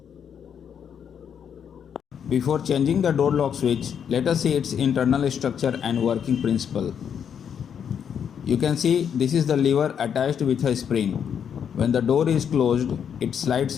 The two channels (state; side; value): quieter; right; 8.0 dB